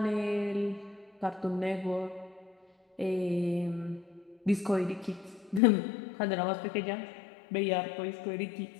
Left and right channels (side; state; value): right; drops out; at 5.6 s